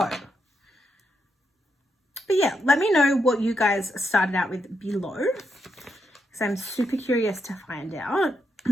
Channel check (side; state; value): both; normal; correlation 0.81